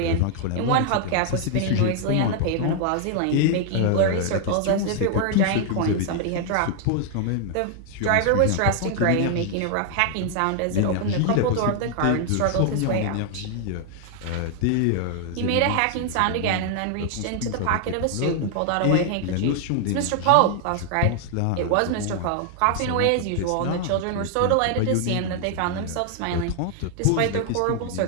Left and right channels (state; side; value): different; both; correlation 0.00